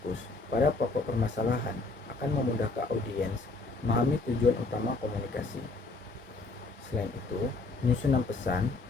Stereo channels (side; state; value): right; quieter; 3.5 dB